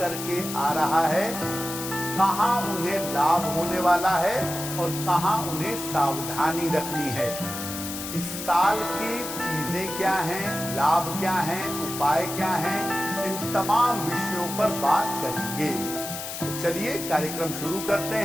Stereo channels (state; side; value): noise; left; hiss, 7 dB below the sound